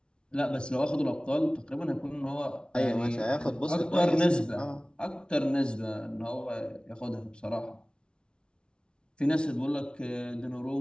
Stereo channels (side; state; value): right; late; 0.056 ms